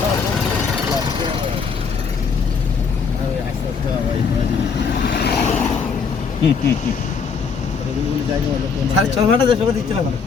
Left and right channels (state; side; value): quieter; right; 5.7 dB